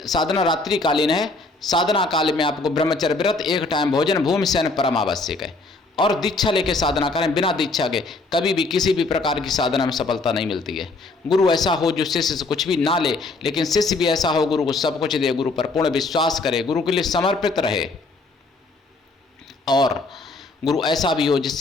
साधना रात्रिकालीन है। साधना काल में आपको ब्रह्मचर्य व्रत, एक टाइम भोजन, भूमि शयन परम आवश्यक है। और दीक्षा लेके साधना करें। बिना दीक्षा के कभी भी किसी भी प्रकार की साधना में सफलता नहीं मिलती है। गुरु ऐसा हो जो शिष्य से कुछ भी ना ले, लेकिन शिष्य भी ऐसा हो गुरु को सब कुछ दे, गुरु पर पूर्ण विश्वास करे, गुरु के लिए समर्पित रहे। और गुरु ऐसा भी हो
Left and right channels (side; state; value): right; quieter; 3.4 dB